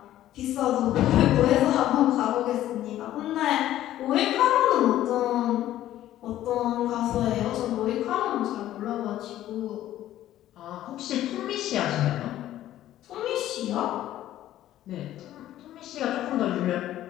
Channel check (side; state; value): right; quieter; 13.2 dB